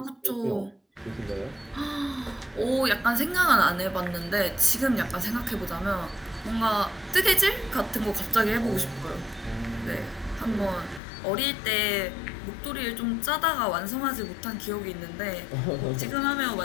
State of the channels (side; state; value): right; drops out; at 11.0 s